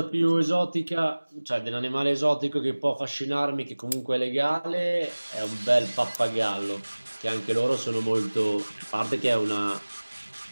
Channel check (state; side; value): inverted; both; correlation -1.00